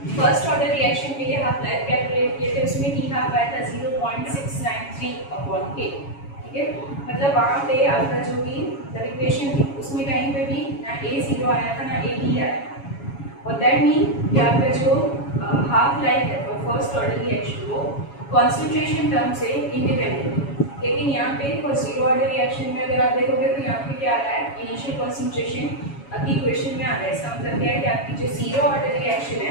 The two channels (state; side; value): late; right; 7.2 ms